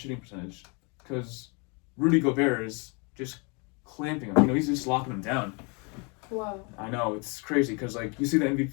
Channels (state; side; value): quieter; right; 32.4 dB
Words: percentage because Rudy Gobert is just clamping him. He's just locking him down. Wow. I know, it's crazy because like you see the